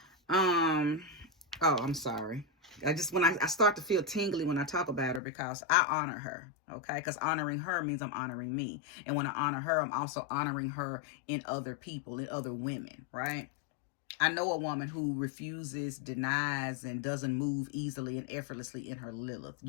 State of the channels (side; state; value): right; drops out; at 5.2 s